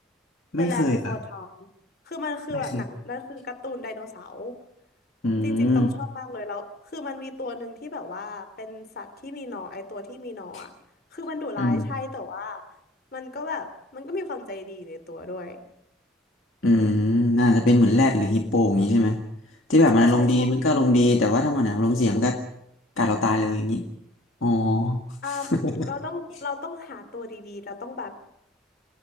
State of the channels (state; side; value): normal; both; correlation 0.54